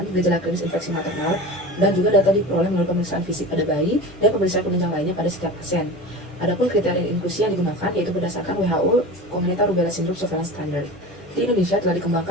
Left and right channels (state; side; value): normal; both; correlation 0.32